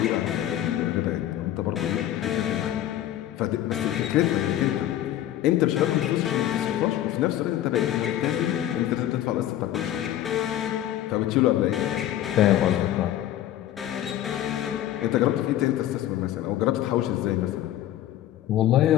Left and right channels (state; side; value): quieter; right; 12.7 dB